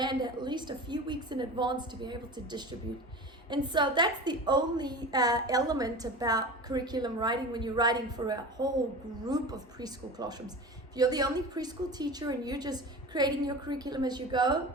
at least a few weeks in advance to be able to distribute. And so that's the only element about curriculum writing when you're writing for a whole group of preschool classrooms. If you're the only preschool teacher and you're just creating your curriculum as you go,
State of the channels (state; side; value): normal; both; correlation 0.33